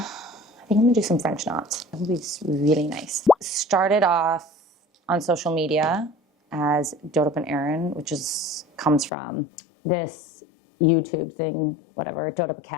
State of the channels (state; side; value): drops out; right; at 9.1 s